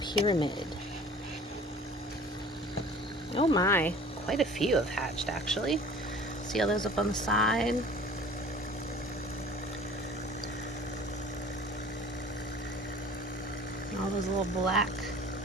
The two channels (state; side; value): normal; both; correlation 0.46